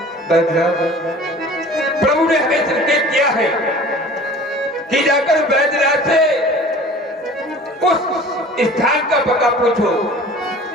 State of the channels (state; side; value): normal; both; correlation 0.44